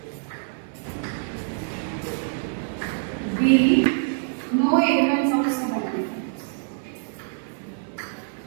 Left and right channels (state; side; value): silent; left; 57 dB below the other